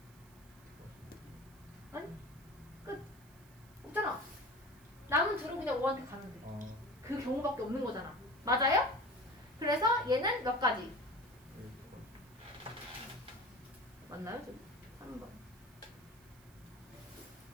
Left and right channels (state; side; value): noise; right; hiss, 25 dB below the sound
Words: 아니? 끝. 없잖아. 남은 둘은 그냥 5한테 가면 돼. 그 경우밖에 없는 거잖아. 맞아요? 그래서 얘는 몇 가지? 맞나요? 지금? 3번.